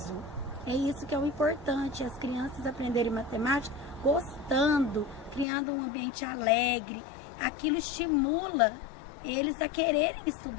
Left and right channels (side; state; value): right; drops out; at 5.5 s